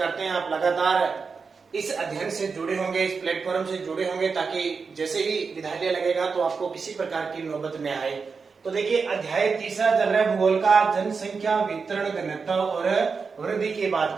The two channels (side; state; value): left; quieter; 5.1 dB